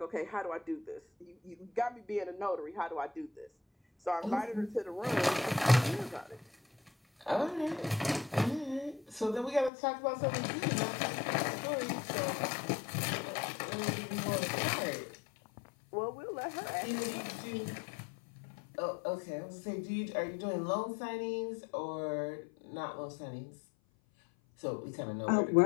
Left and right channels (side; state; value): right; drops out; at 9.7 s